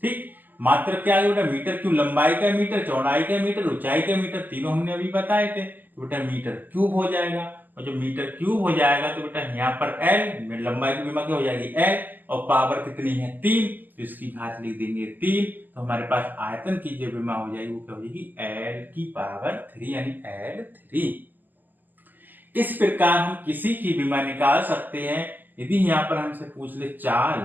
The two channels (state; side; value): late; left; 0.086 ms